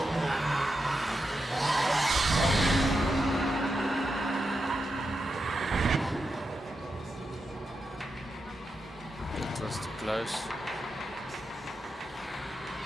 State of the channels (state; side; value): normal; both; correlation 0.87